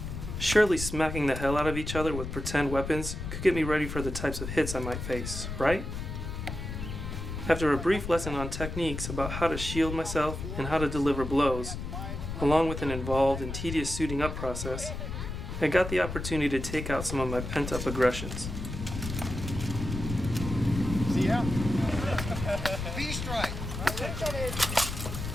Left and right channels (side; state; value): left; noise; rumble, 6 dB below the sound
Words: Surely smacking the hell out of each other with pretend weapons could get me ready for the types of hits I might face, right? After a brief lesson on techniques about how to shield myself and how to deliver blows, along with an involved and tedious suiting up process, I got the opportunity to take out some of my pent-up aggressions. See ya. These strike.